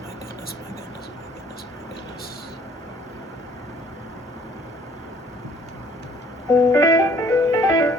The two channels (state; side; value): normal; both; correlation 0.59